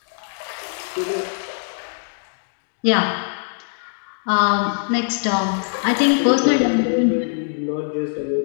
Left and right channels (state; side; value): silent; right; digital silence